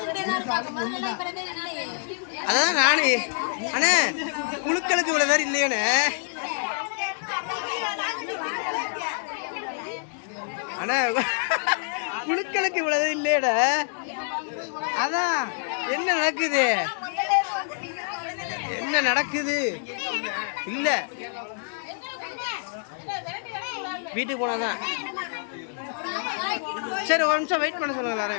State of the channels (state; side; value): silent; right; digital silence